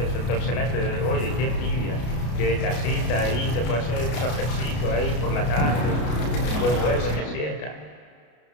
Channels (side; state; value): right; late; 33 ms